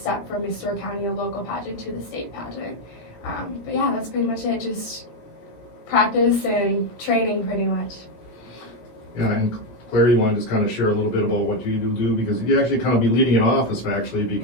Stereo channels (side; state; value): right; late; 17 ms